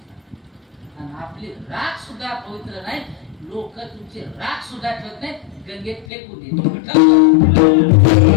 आणि आपली राख सुद्धा पवित्र नाही. लोक तुमची राख सुद्धा ठेवत नाही, गंगेत फेकून देतात.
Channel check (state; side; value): drops out; right; at 6.1 s